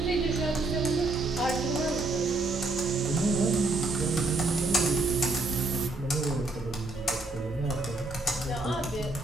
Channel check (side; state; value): left; quieter; 3.2 dB